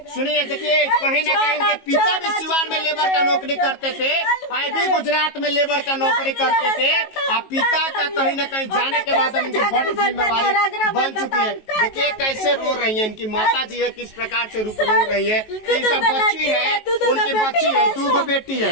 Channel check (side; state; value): right; late; 19 ms